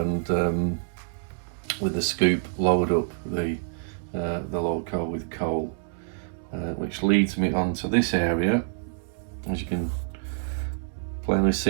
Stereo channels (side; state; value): left; silent; digital silence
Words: with the scoop load up the loco with coal, which leads me onto this area. As you can plainly